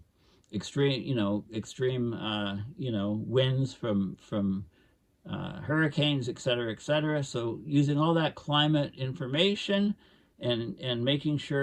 extreme winds from hurricanes, et cetera. So using all that climate information and making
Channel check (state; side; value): identical; both; correlation 1.00